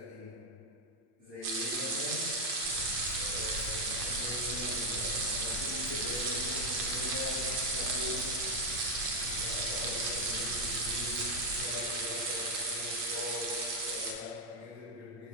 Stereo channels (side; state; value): left; late; 8.7 ms